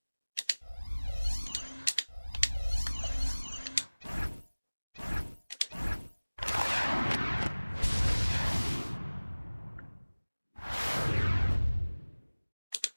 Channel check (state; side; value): inverted; both; correlation -1.00